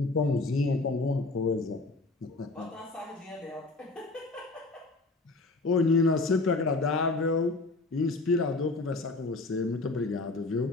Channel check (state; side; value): quieter; right; 3.3 dB